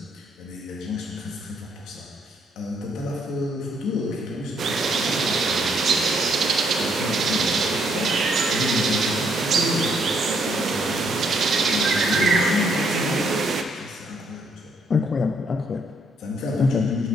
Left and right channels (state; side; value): normal; both; correlation 0.71